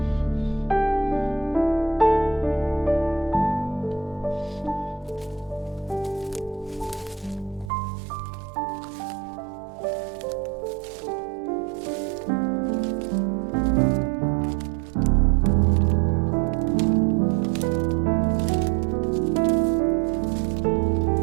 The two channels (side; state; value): left; drops out; at 7.7 s